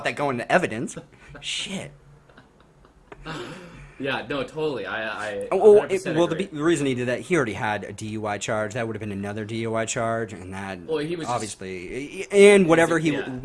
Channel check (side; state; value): both; identical; correlation 1.00